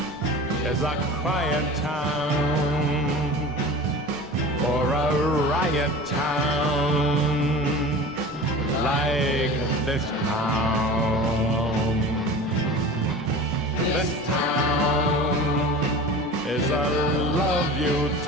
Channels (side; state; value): left; noise; rumble, 29 dB below the sound